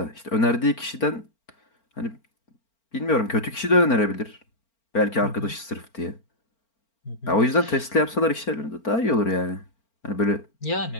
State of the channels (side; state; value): right; late; 4.4 ms